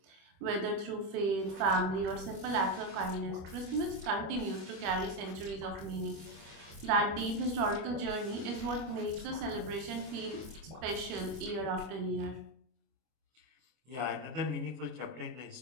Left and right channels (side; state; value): left; late; 25 ms